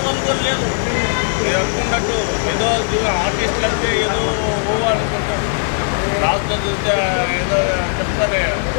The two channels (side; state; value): right; silent; digital silence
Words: వాళ్ళు కూడా లేరు. మీరు అనుకున్నట్టు ఏదో ఆర్టిస్టులు అంటే ఏదో అనుకుంటారు. లాస్ట్లో చూస్తే ఏదో చెప్తారే